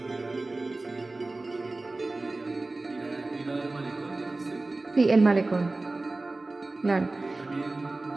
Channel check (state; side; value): quieter; left; 3.1 dB